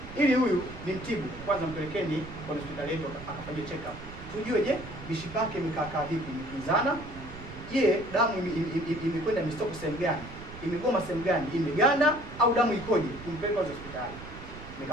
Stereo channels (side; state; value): right; noise; rumble, 14 dB below the sound